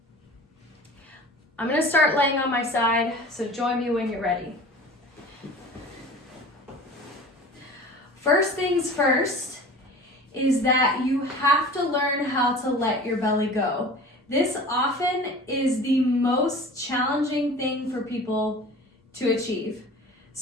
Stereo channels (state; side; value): normal; both; correlation 0.40